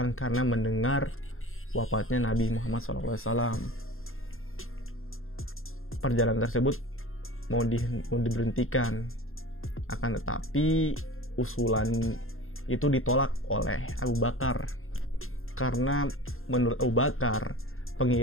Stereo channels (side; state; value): right; late; 0.61 ms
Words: karena mendengar wafatnya Nabi Muhammad SAW. Perjalanan tersebut mau diberhentikan, akan tetapi usulan itu ditolak oleh Abu Bakar karena menurut Abu Bakar